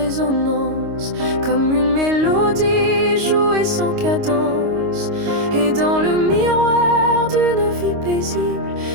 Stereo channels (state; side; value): late; left; 26 ms